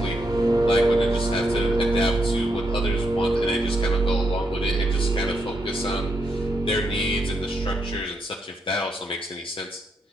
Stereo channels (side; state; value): both; normal; correlation 0.80